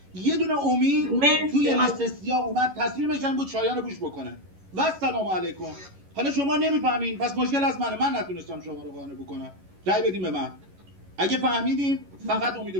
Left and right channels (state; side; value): late; left; 11 ms